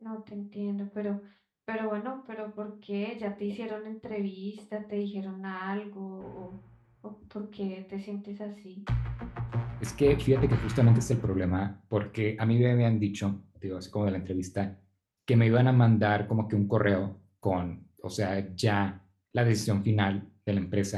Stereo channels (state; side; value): identical; both; correlation 1.00